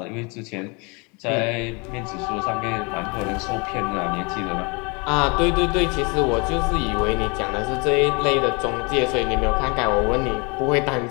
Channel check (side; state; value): right; quieter; 30.4 dB